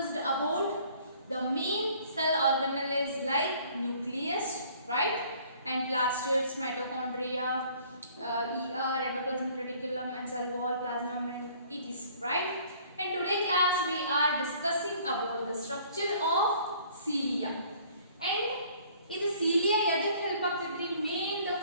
about the main cell organelles like nucleus, right, and plastids, mitochondria, endoplasmic reticulum and cell wall, plasma membrane, etc., right. And today class we are discussing about the structure of cilia. And ಇದು cilia ಎದಕ್ಕೆ ಹೆಲ್ಪ್ ಆಗ್ತೈತ್ರಿ? Main the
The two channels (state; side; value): inverted; both; correlation -0.56